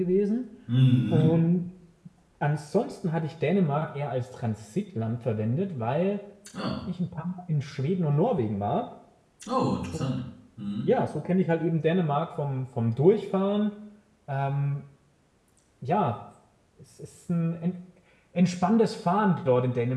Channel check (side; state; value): both; identical; correlation 1.00